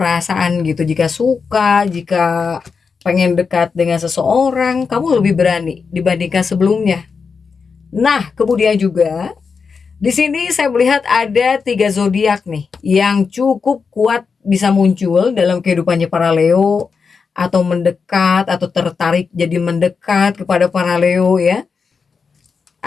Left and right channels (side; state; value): right; quieter; 5.4 dB